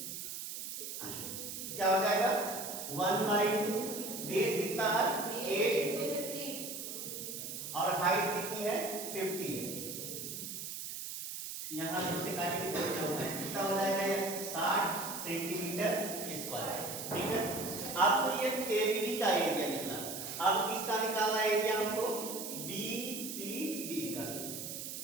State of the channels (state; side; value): noise; right; hiss, 7 dB below the sound